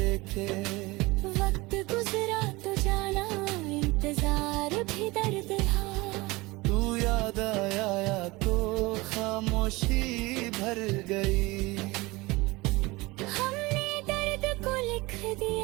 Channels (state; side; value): quieter; left; 22.5 dB